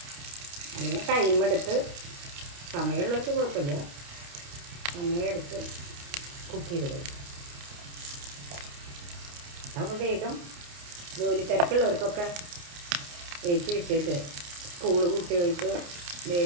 അങ്ങനെ ടൈമെടുത്ത്, സമയമുള്ളവർക്ക് കുഴപ്പമില്ല, സമയമെടുത്ത് കുക്ക് ചെയ്ത് കഴിക്കും. അപ്പോൾ വേഗം ജോലി തിരക്കുള്ളവർക്കൊക്കെ ഏറ്റി വിട്ടിട്ട് കുട്ടികൾക്ക്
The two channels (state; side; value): late; left; 29 ms